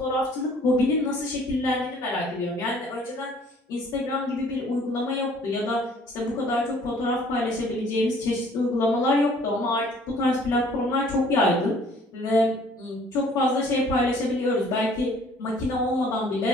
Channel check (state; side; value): normal; both; correlation 0.56